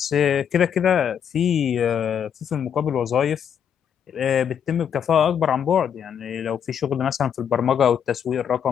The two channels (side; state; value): right; quieter; 8.3 dB